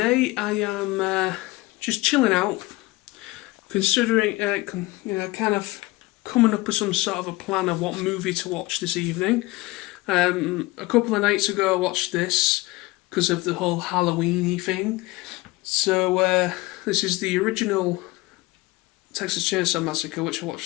I am just chilling out, considering, kind of coming up with some sort of a plan of what movie to watch this evening. A couple of nights ago I watched this because of the whole Halloween-y thing. So this is the original Texas Chainsaw Massacre, which I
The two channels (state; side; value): quieter; right; 20.9 dB